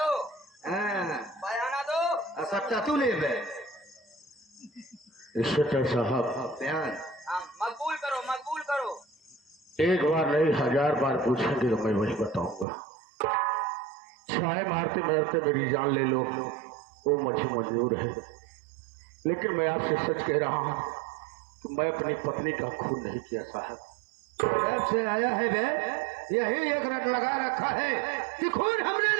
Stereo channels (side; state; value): left; drops out; at 12.7 s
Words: बयाना दो। सच्चा तू नहीं है इंस्पेक्टर साहब। बयान मकबूल करो, मकबूल करो। एक बार नहीं 1000 बार पूछेंगे तो मैं वही बताऊंगा। छाए मारते मारते मेरी जान ले लो, वो मुझे मंजूर है, लेकिन मैं आपसे सच कह रहा हूँ कि मैं अपनी पत्नी का खून नहीं किया साहब। जब से आया है वे यही एक रट लगा रखा है कि खून हमने